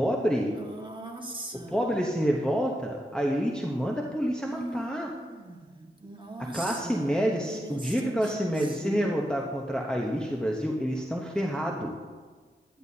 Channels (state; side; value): normal; both; correlation 0.86